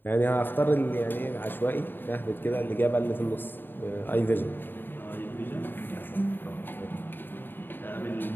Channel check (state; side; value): late; right; 0.095 ms